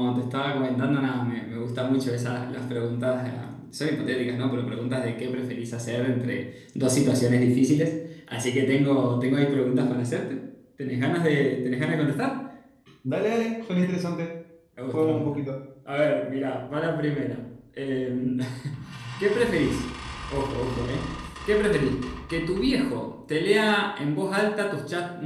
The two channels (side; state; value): both; identical; correlation 1.00